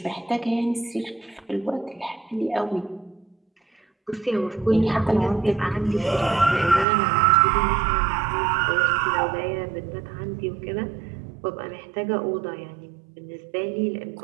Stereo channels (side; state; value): left; drops out; at 6.9 s